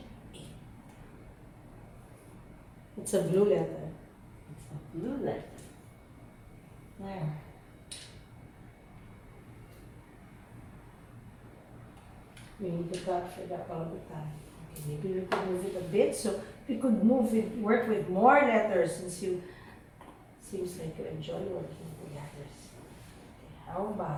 It's a blue letter. It's a blue letter. There. We need to cut for that all the time. Okay, maybe we could move it a bit. So we could move it, work with more letters since you seems like you enjoy working with the letters. Okay, how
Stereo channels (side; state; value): both; identical; correlation 1.00